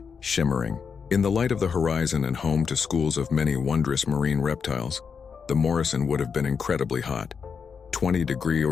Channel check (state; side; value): quieter; right; 6.1 dB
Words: shimmering in the light of the horizon and home to schools of many wondrous marine reptiles. The Morrison would have been incredibly hot,